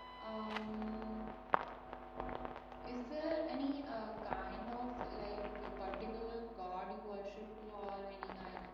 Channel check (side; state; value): both; identical; correlation 1.00